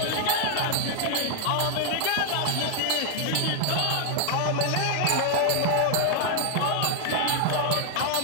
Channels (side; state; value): both; different; correlation 0.00